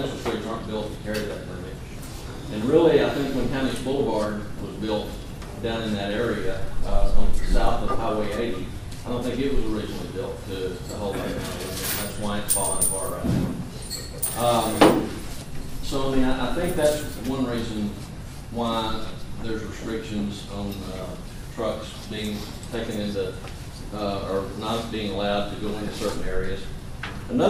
streets, aren't built to carry that limit. And really, I think when County Boulevard was built down in that area, south of Highway 80, I don't think it was originally built to hold that kind of limit. That's why it's falling apart right now. So, I mean, I think that's one reason why there's restrictions on trucks being taken into, or not being allowed to go into certain areas.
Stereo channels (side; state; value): both; identical; correlation 1.00